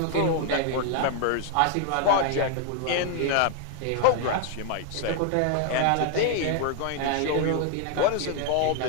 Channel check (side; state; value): both; different; correlation 0.00